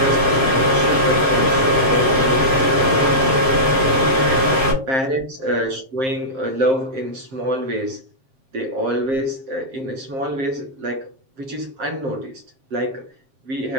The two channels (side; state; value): left; late; 7.5 ms